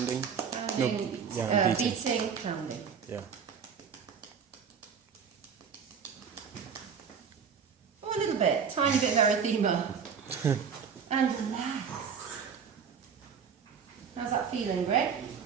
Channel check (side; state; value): left; quieter; 6.7 dB